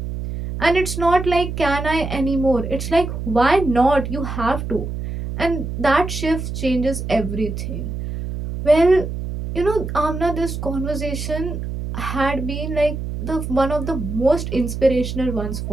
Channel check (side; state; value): right; noise; hum, 5 dB below the sound